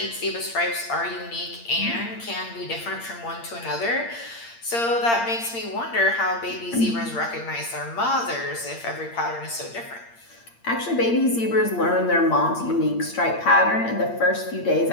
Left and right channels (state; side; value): late; right; 8.7 ms